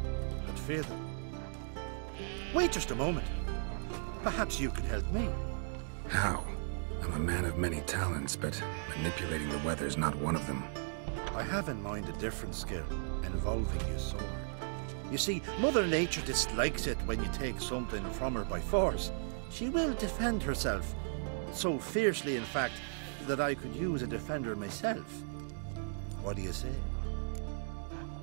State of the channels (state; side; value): silent; left; digital silence